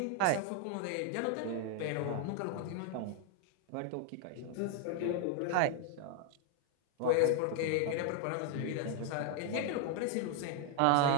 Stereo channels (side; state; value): both; different; correlation 0.00